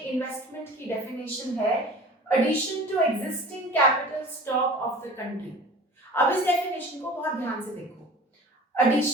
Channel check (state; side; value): normal; both; correlation 0.41